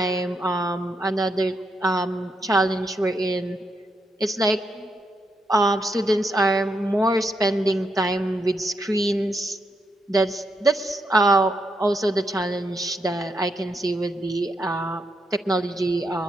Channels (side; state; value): both; normal; correlation 0.81